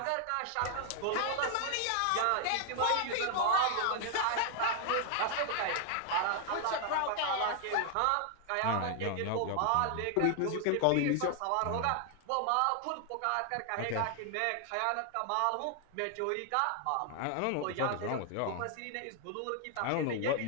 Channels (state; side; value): different; both; correlation 0.00